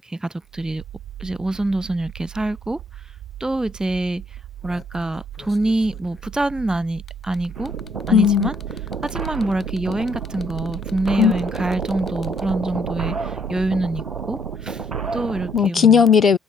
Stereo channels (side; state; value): both; normal; correlation 0.68